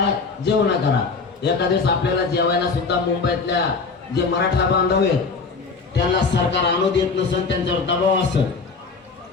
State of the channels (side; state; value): right; quieter; 4.6 dB